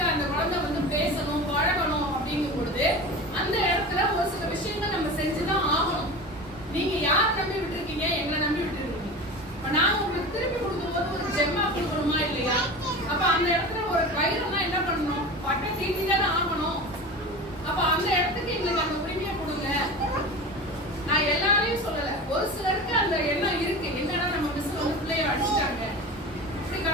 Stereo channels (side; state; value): both; normal; correlation 0.31